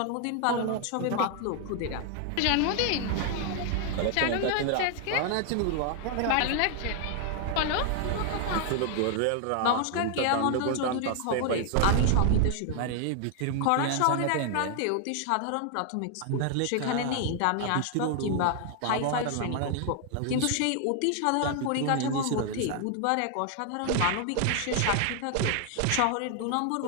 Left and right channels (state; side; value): different; both; correlation 0.00